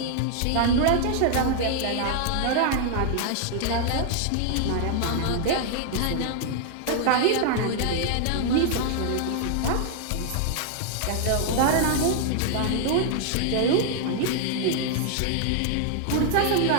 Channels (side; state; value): both; different; correlation 0.00